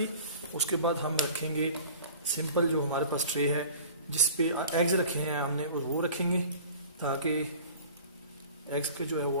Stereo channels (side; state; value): both; inverted; correlation -0.43